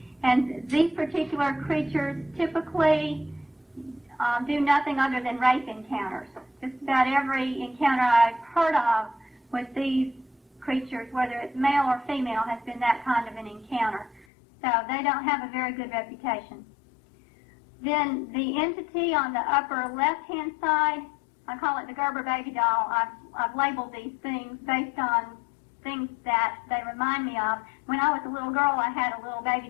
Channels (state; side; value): drops out; right; at 14.2 s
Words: And these particular creatures typically do nothing other than rape encounters. Just about every encounter I've heard of with these creatures, whether it's male or female, has been that kind of an encounter. So they don't have a very good reputation. Then the entity on the upper left-hand side, I call it the Gerber baby doll. I've labeled these things based on things that they remind me of. When I was a little girl, I had a little baby